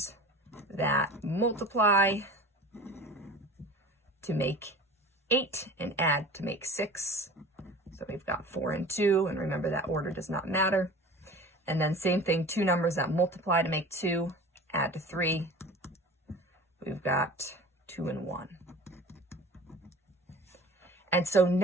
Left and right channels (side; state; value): both; normal; correlation 0.39